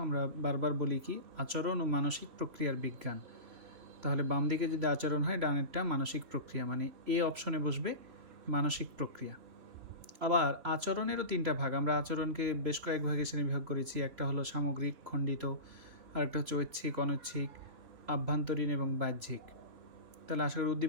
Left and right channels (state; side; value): late; left; 3.0 ms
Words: আমরা বারবার বলি কি আচরণ ও মানসিক প্রক্রিয়ার বিজ্ঞান। তাহলে বাম দিকে যদি আচরণ হয়, ডানেরটা মানসিক প্রক্রিয়া, মানে এ অপশনে বসবে মানসিক প্রক্রিয়া। আবার আচরণেরও 3টা ভাগ। আমরা আচরণকে বেশ কয়েক ভাগে শ্রেণীবিভাগ করেছি। একটা হলো সামগ্রিক, খণ্ডিত, আরেকটা হচ্ছে ঐচ্ছিক, অনৈচ্ছিক, আভ্যন্তরীণ এবং বাহ্যিক। তাহলে আশা করি